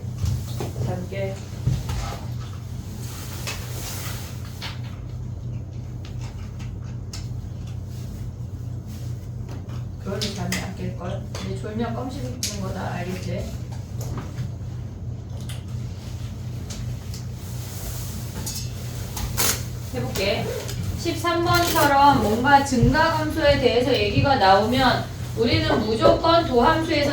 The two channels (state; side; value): identical; both; correlation 1.00